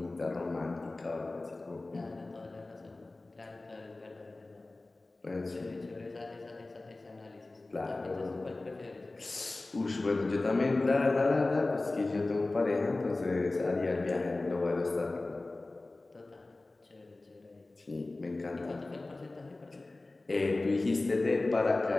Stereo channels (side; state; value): right; quieter; 3.1 dB